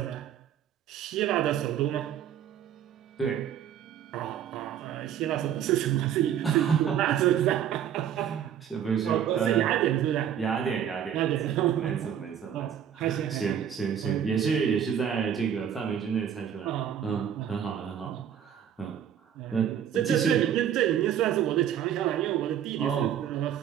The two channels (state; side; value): quieter; left; 9.4 dB